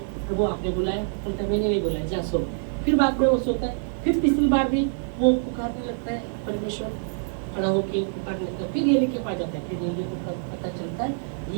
प्रभु आपने बुलाया? बोलता है मैंने नहीं बुलाया, जा सो। फिर बाद में वो सोता है, फिर तीसरी बार भी वो पुकारने लगता है, परमेश्वर खड़ा होकर पुकारने लगता है, फिर एली के पास जाता है, फिर एली को पता चलता है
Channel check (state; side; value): silent; left; 61 dB below the other